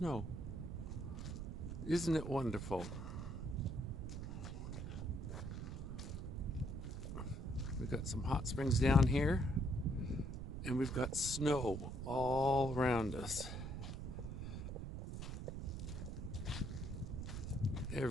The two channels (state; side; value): noise; right; rumble, 6 dB below the sound